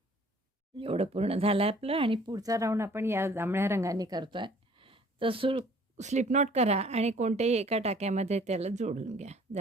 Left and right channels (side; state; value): both; normal; correlation 0.54